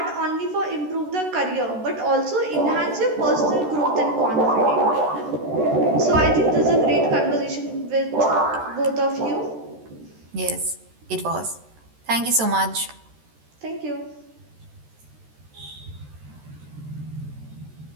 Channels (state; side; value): late; left; 13 ms